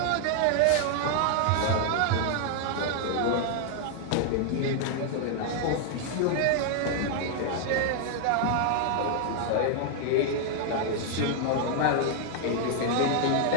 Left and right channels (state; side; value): different; both; correlation 0.00